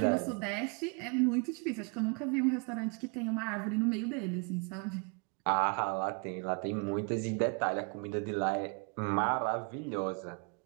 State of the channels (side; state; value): left; quieter; 34.8 dB